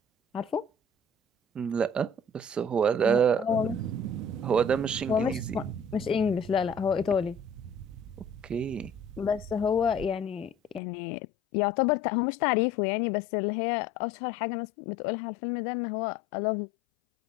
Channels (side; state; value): right; drops out; at 10.8 s